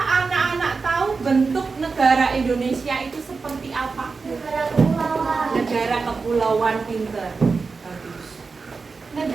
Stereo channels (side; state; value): left; quieter; 4.5 dB